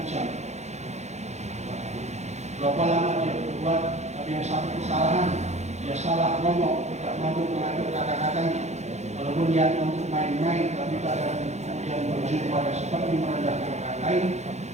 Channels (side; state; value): left; late; 0.33 ms